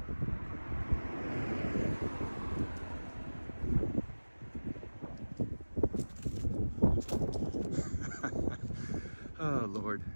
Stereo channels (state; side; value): inverted; both; correlation -1.00